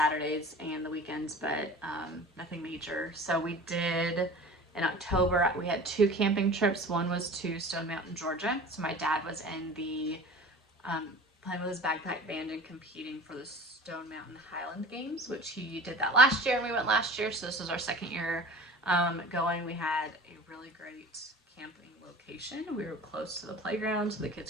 and the weekends, but nothing major. So we did in October, we had 2 camping trips. One was to Stone Mountain, Georgia. So my dad was in the playing with his backpack band and competing for the Stone Mountain Highland Games, which he did that last year and we went last year. So this was our second year going. We had a really great camping location. We were close to the playground so the kids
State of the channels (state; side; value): normal; both; correlation 0.40